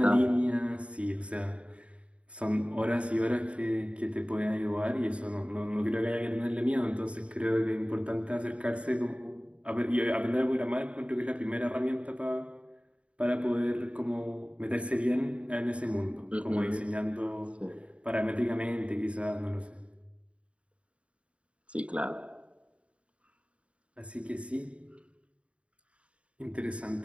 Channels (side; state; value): left; late; 0.061 ms